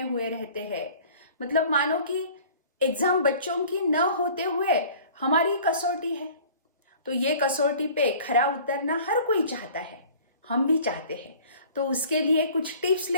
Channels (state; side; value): inverted; both; correlation -0.48